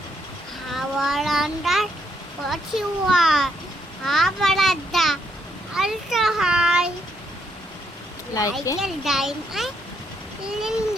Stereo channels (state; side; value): normal; both; correlation 0.74